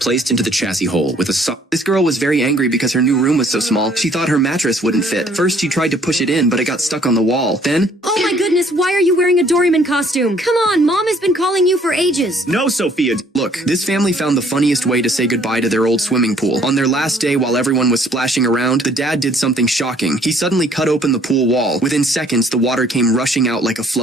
into the chassis hole with a This girl was very angry because her new room was so small. She thought her mattress wouldn't fit. First, she tried to push it in, but it got stuck on the wall. Then... Oh my goodness, why are you wearing a Doraemon costume? Come on, Mom has been calling you for ages. No, Sophia. Look, this family found the funniest way to say goodbye to their old swimming pool. On their last day, while everyone was splashing around, the dad did something shocking. He suddenly cut open the pool wall. Within seconds, the water came rushing out like a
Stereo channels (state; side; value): normal; both; correlation 0.61